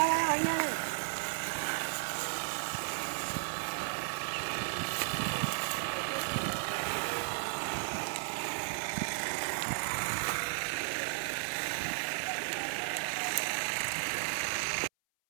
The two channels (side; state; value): left; silent; 55 dB below the other